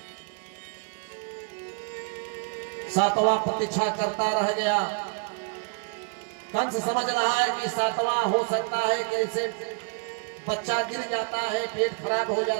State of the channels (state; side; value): quieter; left; 38.0 dB